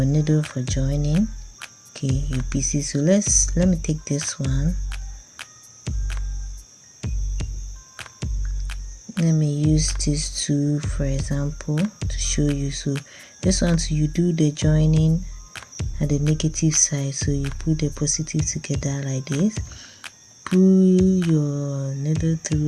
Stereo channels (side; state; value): both; identical; correlation 1.00